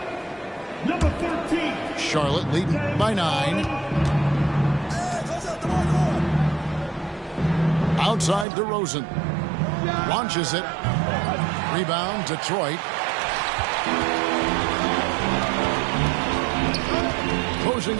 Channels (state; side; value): drops out; left; at 8.5 s